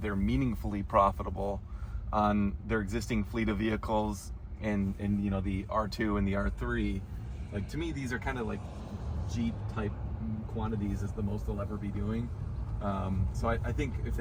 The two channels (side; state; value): both; identical; correlation 1.00